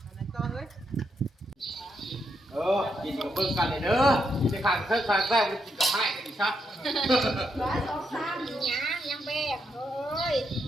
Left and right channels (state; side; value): normal; both; correlation 0.80